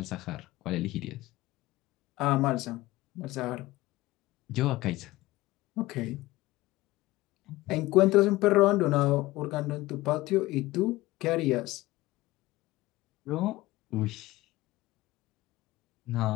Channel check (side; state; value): right; quieter; 18.5 dB